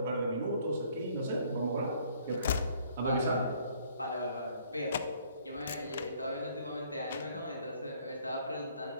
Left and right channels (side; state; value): both; inverted; correlation -0.61